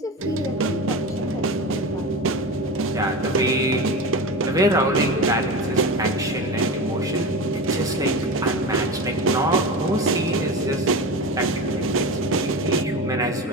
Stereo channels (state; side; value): normal; both; correlation 0.26